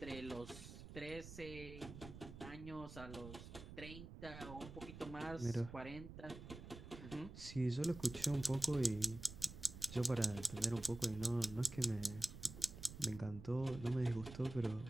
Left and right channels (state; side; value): noise; right; rumble, 12 dB below the sound